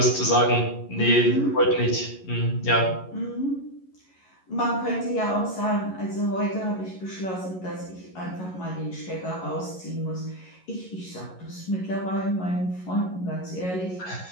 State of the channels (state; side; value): late; right; 11 ms